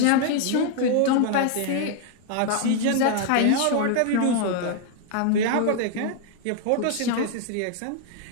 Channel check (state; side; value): different; both; correlation 0.00